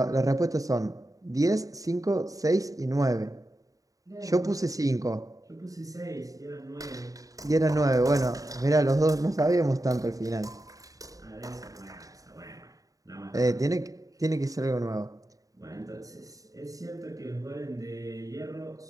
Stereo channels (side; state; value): left; late; 0.17 ms